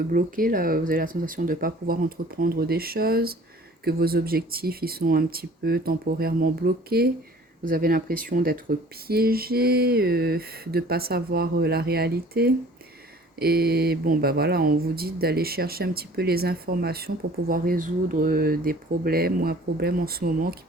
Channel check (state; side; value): normal; both; correlation 0.50